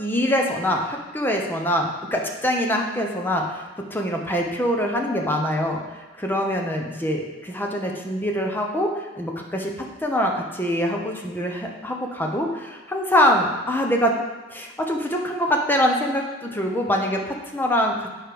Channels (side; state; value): both; normal; correlation 0.49